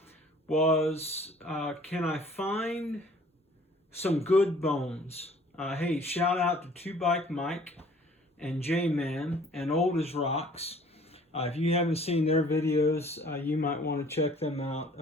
was, can I find some good bones? Hey, shout out to Two Bike Mike and J-Man and Old as Rocks. If you haven't seen their videos, you might want to check them out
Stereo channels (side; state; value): both; normal; correlation 0.54